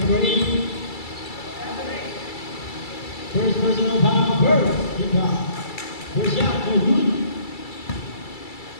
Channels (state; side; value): late; right; 2.3 ms